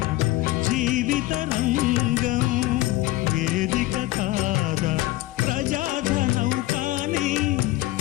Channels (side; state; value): right; quieter; 17.8 dB